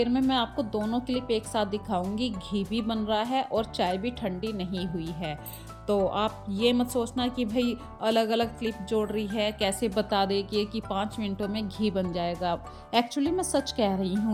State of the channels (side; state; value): both; identical; correlation 1.00